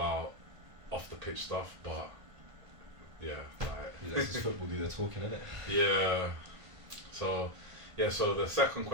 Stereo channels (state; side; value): late; left; 1.5 ms